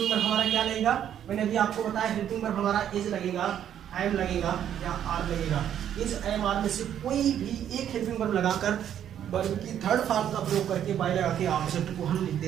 वर्ब हमारा क्या लगेगा, मैंने अभी आपको बताया हेल्पिंग वर्ब हमारा इज लगेगा, एम लगेगा या आर लगेगा। इज एम आर में से कोई भी एक हेल्पिंग वर्ब लगाकर वर्ब की थर्ड फॉर्म का प्रयोग करके बाई लगा के ऑब्जेक्ट को हम लिख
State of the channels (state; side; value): quieter; left; 10.0 dB